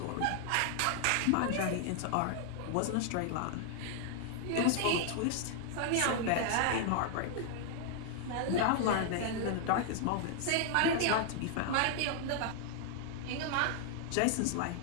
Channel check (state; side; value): different; both; correlation 0.00